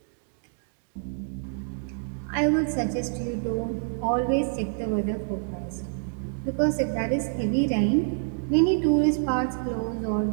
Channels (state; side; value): silent; left; digital silence